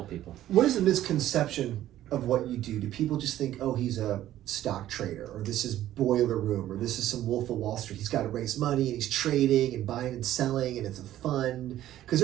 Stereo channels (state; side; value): quieter; left; 13.1 dB